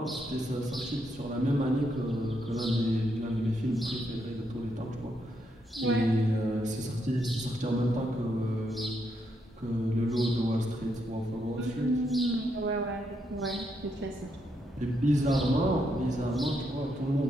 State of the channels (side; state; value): both; normal; correlation 0.79